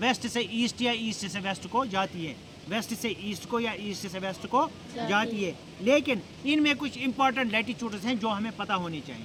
से ईस्ट या ईस्ट से वेस्ट को जाती है, वेस्ट से ईस्ट को या ईस्ट से वेस्ट को जाती है। लेकिन इनमें कुछ इंपॉर्टेंट लैटिट्यूड्स हैं जो हमें पता होने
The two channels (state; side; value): identical; both; correlation 1.00